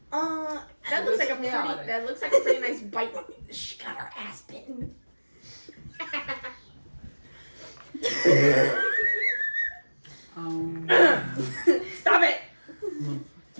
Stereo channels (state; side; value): inverted; both; correlation -1.00